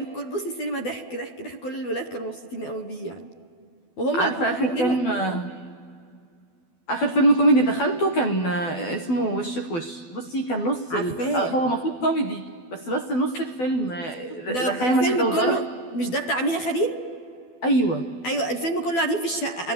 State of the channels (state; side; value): late; right; 12 ms